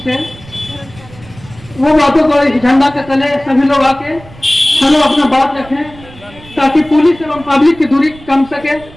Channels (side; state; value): right; noise; rumble, 21 dB below the sound